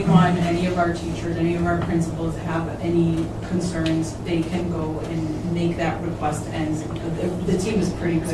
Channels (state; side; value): identical; both; correlation 1.00